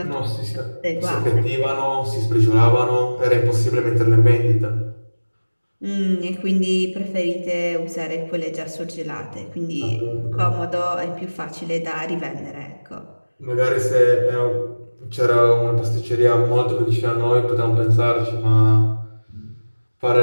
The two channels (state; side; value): inverted; both; correlation -1.00